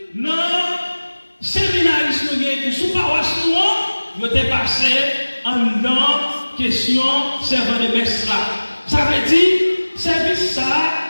non, séminaristes qui sont paroisse noire, ils ont passé en dedans question servant de messe là. Ça veut dire, service ça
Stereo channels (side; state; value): both; inverted; correlation -1.00